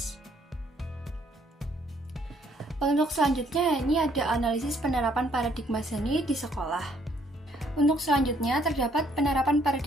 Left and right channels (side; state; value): both; normal; correlation 0.67